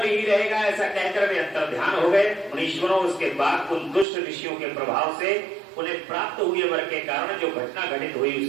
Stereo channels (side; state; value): left; drops out; at 4.0 s